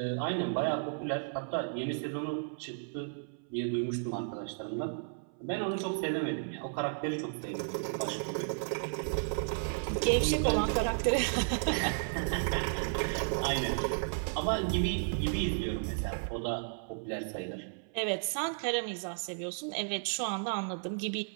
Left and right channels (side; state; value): left; silent; 55 dB below the other